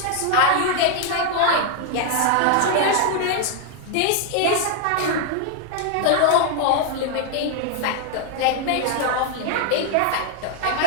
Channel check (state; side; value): different; both; correlation 0.01